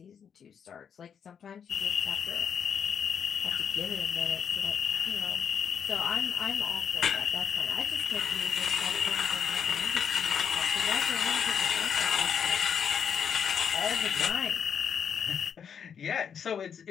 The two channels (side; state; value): right; quieter; 7.5 dB